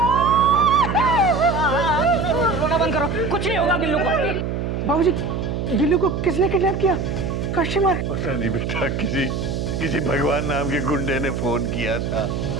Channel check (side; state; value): right; noise; hum, 2 dB below the sound